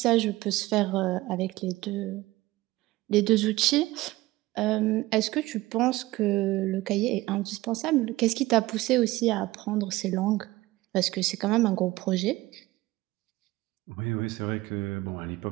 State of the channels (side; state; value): left; quieter; 18.7 dB